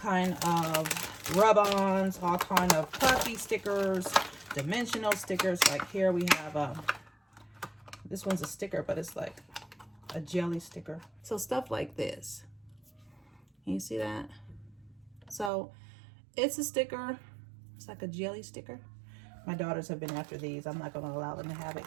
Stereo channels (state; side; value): drops out; left; at 15.5 s